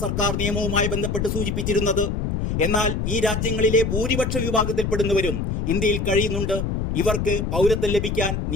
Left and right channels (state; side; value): noise; left; rumble, 1 dB below the sound